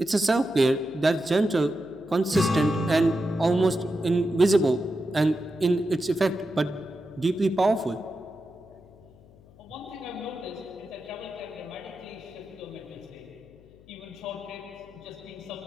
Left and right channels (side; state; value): left; noise; hum, 25 dB below the sound